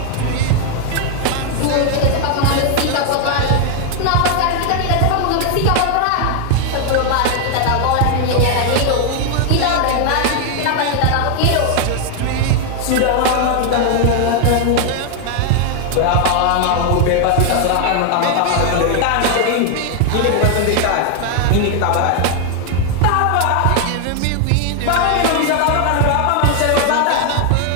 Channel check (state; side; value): different; both; correlation 0.00